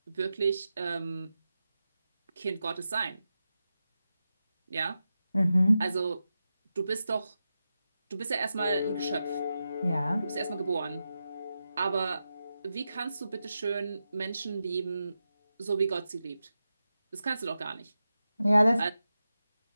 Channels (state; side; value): inverted; both; correlation -0.91